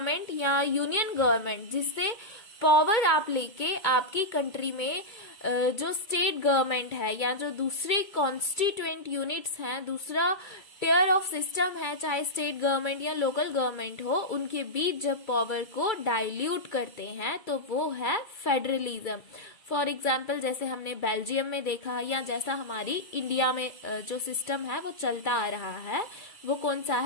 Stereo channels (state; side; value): late; right; 2.3 ms